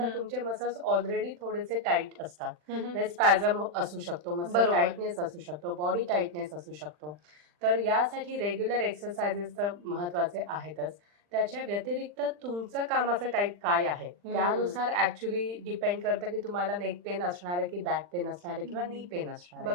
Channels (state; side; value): late; left; 40 ms